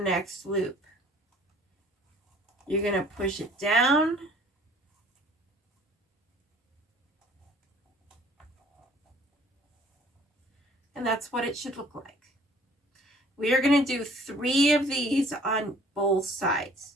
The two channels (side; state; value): both; normal; correlation 0.55